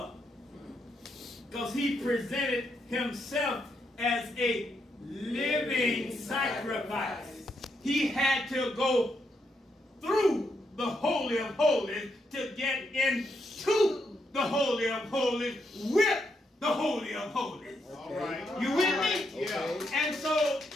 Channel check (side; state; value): both; normal; correlation 0.79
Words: because he presented himself as a living sacrifice. He had to go through the Holy of Holies to get into the Holy of Holies with the Holy of Holies. All right. You with me? Yeah. And so